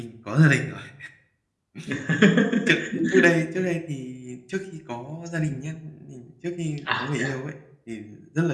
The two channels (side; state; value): both; identical; correlation 1.00